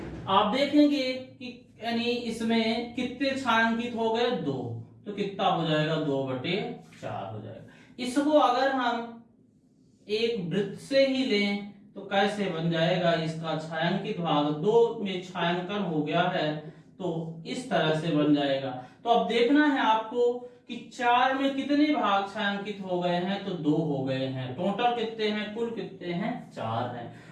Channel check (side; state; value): both; identical; correlation 1.00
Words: आप देखेंगे कि यानी इसमें कितने छायांकित हो गए 2, तो कितना हो जाएगा 2/4 हो जाएगा। इसको अगर हम एक वृत्त से ही लें तो कैसे बन जाएगा, इसका छायांकित भाग 2 में छायांकन हो गया है, तो इस तरह से बन जाएगा। तो अब देखना है आपको कि 4 में कितने भाग छायांकित हो गए हैं, तो 2 हो गए हैं। टोटल कितने हैं, कुल कितने हैं 4 हैं।